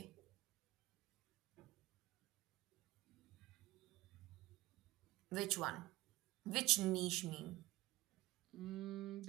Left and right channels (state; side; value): quieter; left; 18.5 dB